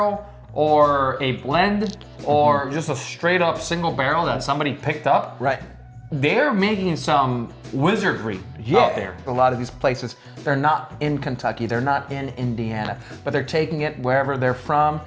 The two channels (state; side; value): identical; both; correlation 1.00